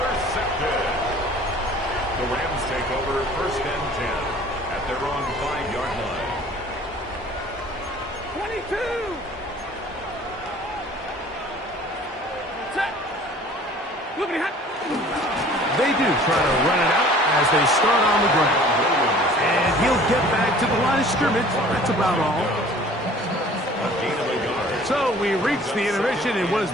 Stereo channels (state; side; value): normal; both; correlation 0.49